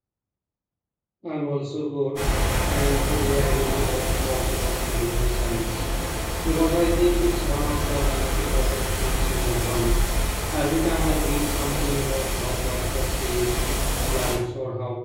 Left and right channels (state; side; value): identical; both; correlation 1.00